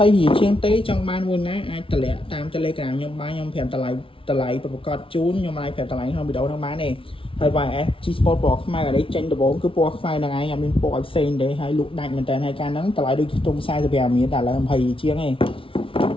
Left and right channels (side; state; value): right; late; 0.26 ms